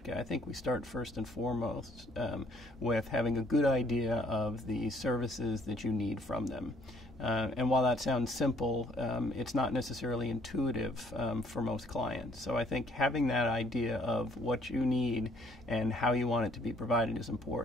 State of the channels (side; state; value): both; normal; correlation 0.63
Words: I think we start first and foremost with having a good idea of the services that you need from them. And while that sounds simple, it's not necessarily intuitive for most clients. So I think having that idea of what you need and how you want it to be provided is